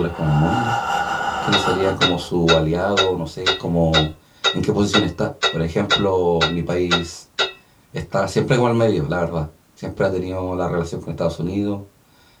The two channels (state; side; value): identical; both; correlation 1.00